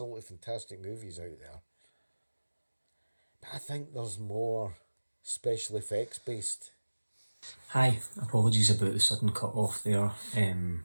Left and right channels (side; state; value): both; inverted; correlation -1.00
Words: fantastic movies out there. But I think there's more special effects based. Hi, apologies about the sudden cut off there.